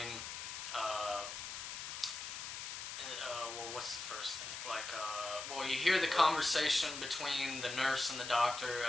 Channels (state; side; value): noise; left; hiss, 7 dB below the sound